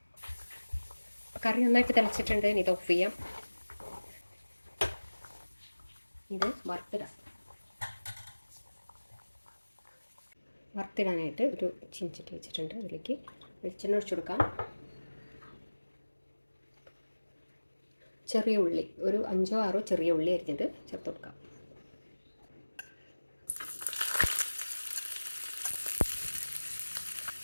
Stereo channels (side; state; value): both; inverted; correlation -1.00